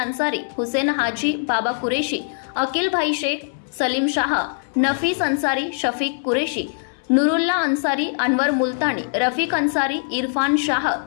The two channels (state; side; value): silent; right; 63 dB below the other